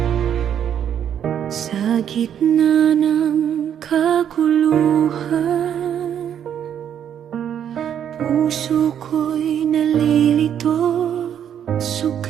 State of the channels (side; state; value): left; quieter; 9.3 dB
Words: Sa gitna ng kaguluhan, puso ko'y nalilito,